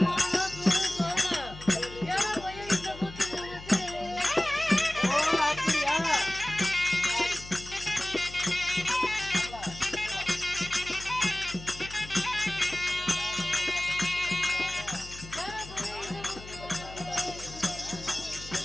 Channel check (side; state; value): left; noise; hum, 15 dB below the sound